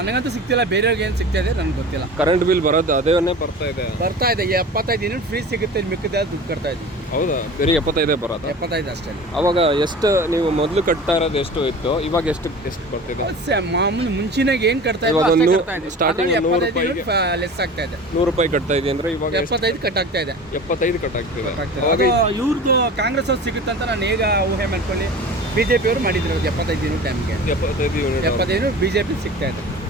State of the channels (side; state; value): both; normal; correlation 0.37